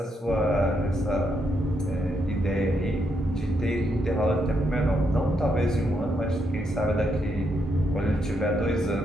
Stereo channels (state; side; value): normal; both; correlation 0.79